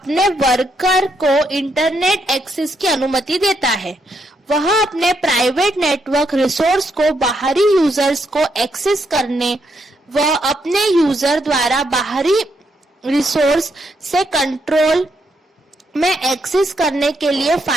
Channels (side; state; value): both; normal; correlation 0.77